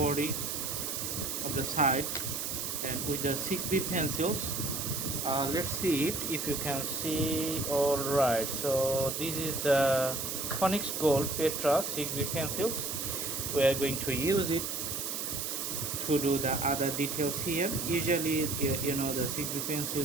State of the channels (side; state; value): right; noise; hiss, 3 dB below the sound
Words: of the side. And with the 6B pencils, let's see it if you can see. All right, so this is the Onyx Gold Petra 6B pencils. We are going to use it to do the other details here. Usually the 6B